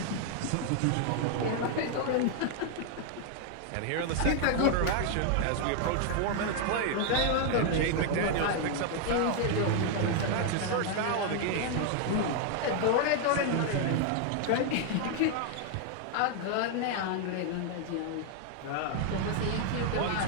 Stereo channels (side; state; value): both; different; correlation 0.00